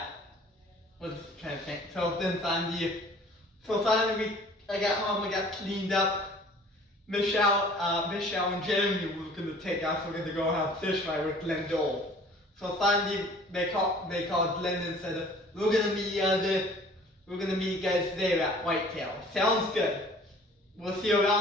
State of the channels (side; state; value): both; normal; correlation 0.51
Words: I was trying to think. So then finally, I got home, I got cleaned up. Michelle and Jeremy were gonna take us. We're gonna go have fish fry with Glenn Dole. So finally, they called Glenn and said, we're gonna meet you guys there at Whitetail. Sounds good. We'll see you